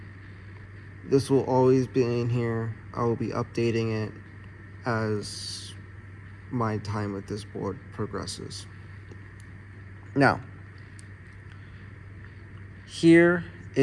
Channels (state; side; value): identical; both; correlation 1.00